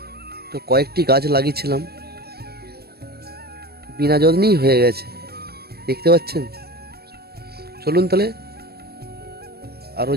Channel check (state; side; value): late; left; 0.46 ms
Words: তো কয়েকটি গাছ লাগিয়েছিলাম, বিনা যত্নেই হয়ে গেছে, দেখতে পাচ্ছেন। চলুন তাহলে আরও